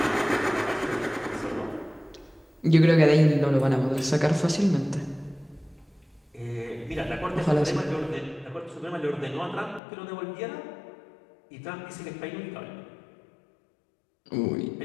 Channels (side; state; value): right; drops out; at 9.8 s